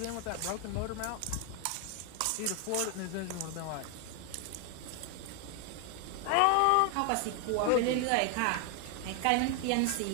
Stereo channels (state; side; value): different; both; correlation 0.01